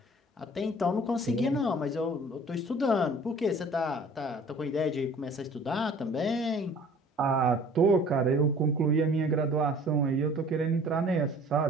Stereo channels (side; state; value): both; normal; correlation 0.49